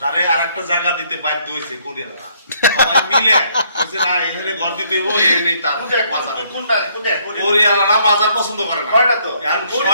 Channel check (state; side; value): inverted; both; correlation -0.67